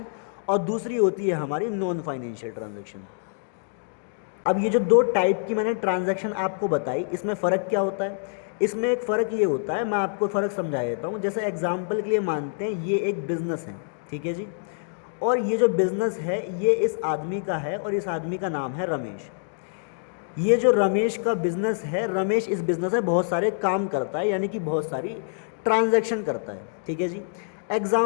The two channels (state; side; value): silent; right; digital silence